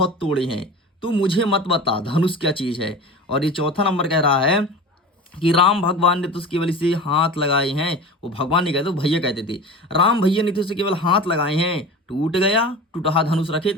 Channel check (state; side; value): normal; both; correlation 0.34